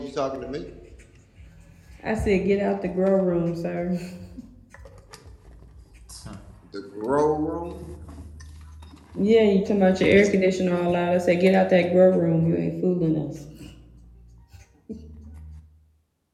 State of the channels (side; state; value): both; identical; correlation 1.00